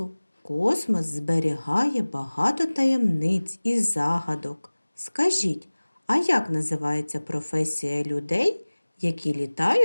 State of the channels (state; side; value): inverted; both; correlation -1.00